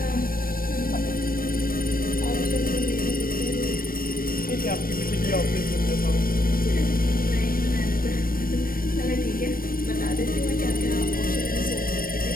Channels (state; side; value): late; right; 0.42 ms